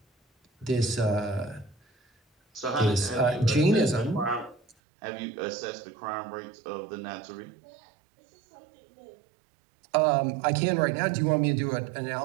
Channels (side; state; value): left; drops out; at 4.8 s